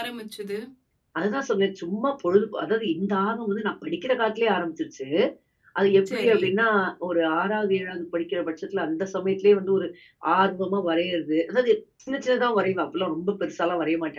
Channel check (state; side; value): identical; both; correlation 1.00